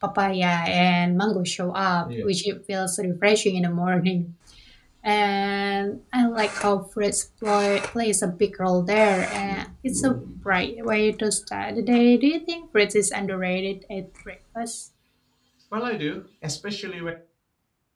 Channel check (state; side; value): identical; both; correlation 1.00